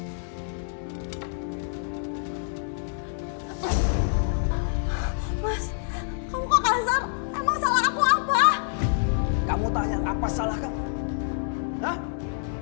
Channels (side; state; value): right; silent; digital silence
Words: Mas, kamu kok kasar? Emang salah aku apa? Kamu tanya apa salah kamu? Hah?